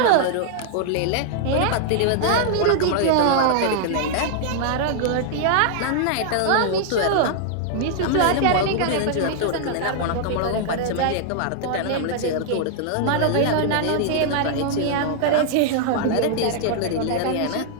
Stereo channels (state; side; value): different; both; correlation -0.01